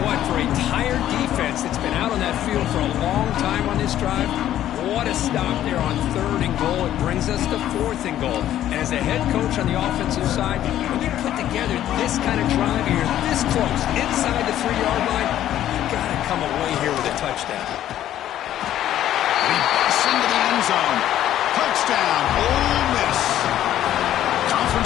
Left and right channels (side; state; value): right; quieter; 12.1 dB